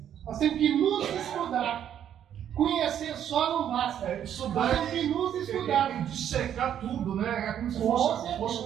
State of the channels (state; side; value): quieter; left; 9.8 dB